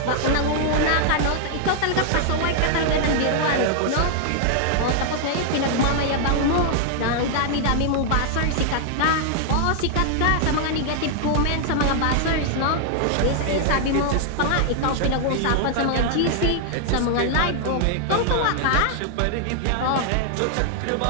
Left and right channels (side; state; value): both; different; correlation 0.00